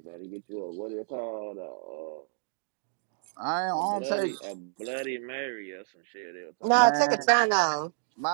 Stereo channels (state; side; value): silent; left; digital silence